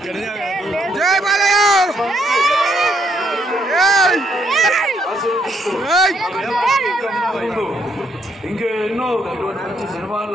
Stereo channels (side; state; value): both; normal; correlation 0.72